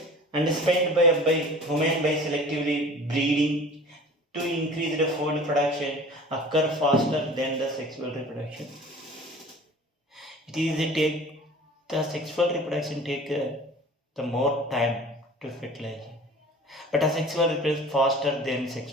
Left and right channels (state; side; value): normal; both; correlation 0.43